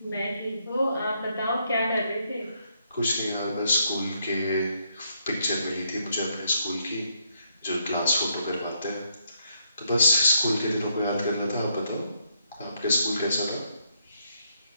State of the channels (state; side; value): inverted; both; correlation -0.75